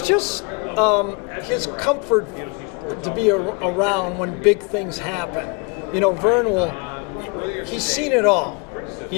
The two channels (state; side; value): quieter; right; 31.5 dB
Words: just his comfort to be around when big things happen. Vern he's seen it all,